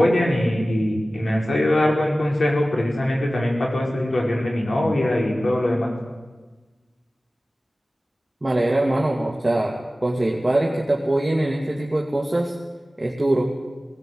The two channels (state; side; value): normal; both; correlation 0.96